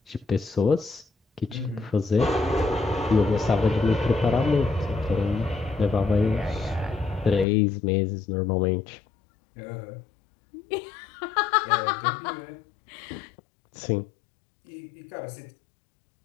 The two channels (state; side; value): drops out; right; at 7.5 s